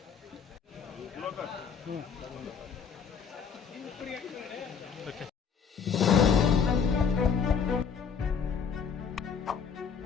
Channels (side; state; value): right; quieter; 6.7 dB